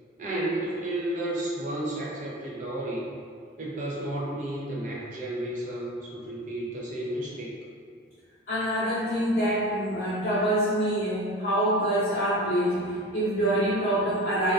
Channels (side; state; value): both; normal; correlation 0.33